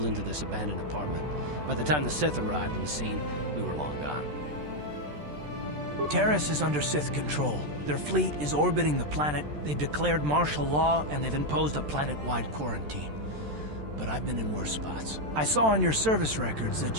into this abandoned apartment. By the time the Sith arrived on the scene, we were long gone. Terrace is under Sith control. Their fleet is orbiting the planet, they've declared martial law, and they've imposed a planet-wide quarantine. But I've been in worse spots. I saw on your service records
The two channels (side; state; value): left; late; 13 ms